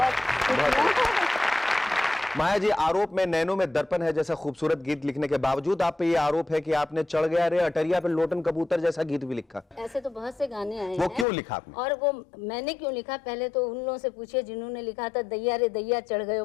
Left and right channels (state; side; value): drops out; right; at 11.2 s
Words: माया जी, आरोप में नैनों में दर्पण है जैसा खूबसूरत गीत लिखने के बावजूद आप पे ये आरोप है कि आपने चढ़ गया रे अटरिया पे लोटन कबूतर जैसा गीत भी लिखा। ऐसे तो बहुत से गाने आए वो हैं। क्यों लिखा आपने? और वो मैंने क्यों लिखा, पहले तो उन लोगों से पूछिए जिन्होंने लिखा था दैया रे दैया चढ़